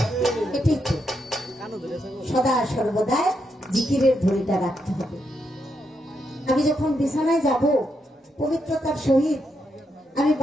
এটাই তো সদা সর্বদা জিকিরের ধরিটা রাখতে হবে। আমি যখন বিছানায় যাব পবিত্রতার সহিত আমি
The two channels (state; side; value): normal; both; correlation 0.81